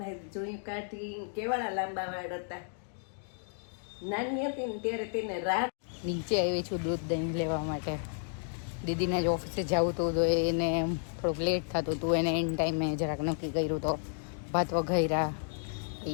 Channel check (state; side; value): silent; right; digital silence